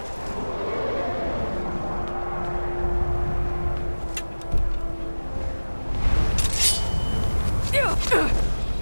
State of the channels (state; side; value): inverted; both; correlation -1.00